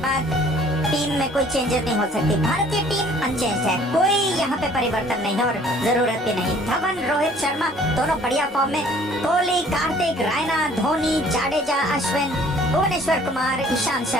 बाद टीम में कोई चेंजेस नहीं हो सकती। भारतीय टीम अनचेंज है, कोई यहाँ पे परिवर्तन नहीं है और जरूरत भी नहीं। धवन, रोहित शर्मा दोनों बढ़िया फॉर्म में, कोहली, कार्तिक, रायना, धोनी, जाडेजा, अश्विन, भुवनेश्वर कुमार, ईशांत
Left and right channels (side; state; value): both; normal; correlation 0.55